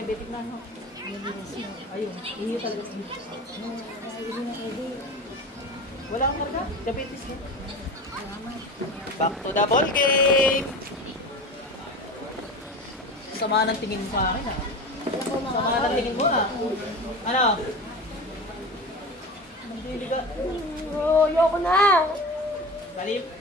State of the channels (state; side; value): normal; both; correlation 0.31